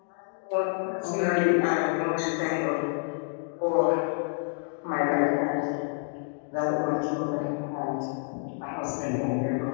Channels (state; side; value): silent; right; 59 dB below the other